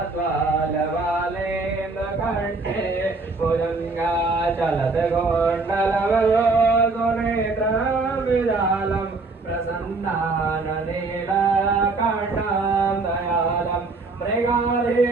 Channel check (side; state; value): left; quieter; 3.7 dB